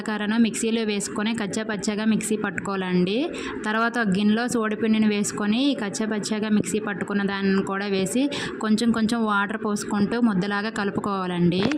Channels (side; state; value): both; identical; correlation 1.00